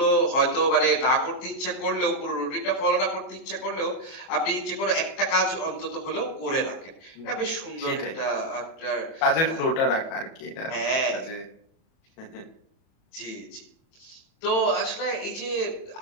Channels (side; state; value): right; late; 37 ms